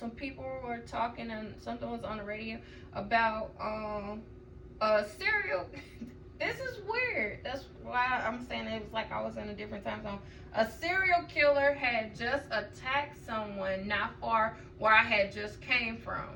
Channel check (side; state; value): both; identical; correlation 1.00